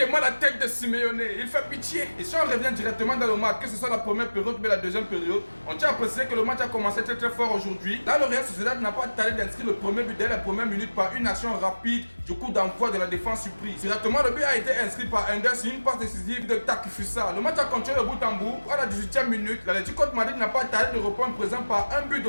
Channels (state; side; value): inverted; both; correlation -1.00